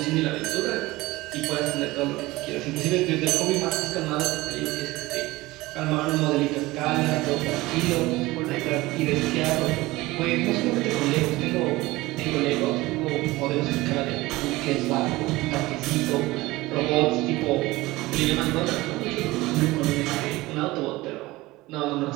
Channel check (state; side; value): quieter; left; 19.7 dB